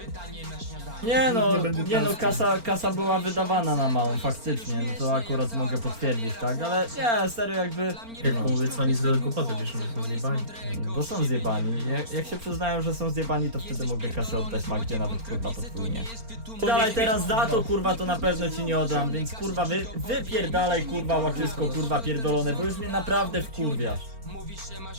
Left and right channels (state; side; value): late; left; 4.4 ms